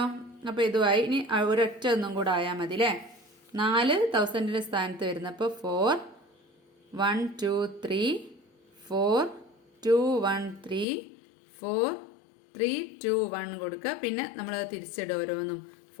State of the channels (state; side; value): drops out; right; at 10.9 s